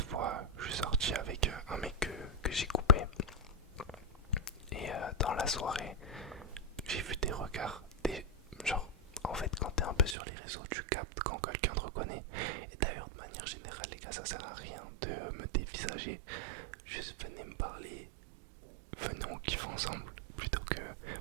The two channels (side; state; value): left; drops out; at 10.2 s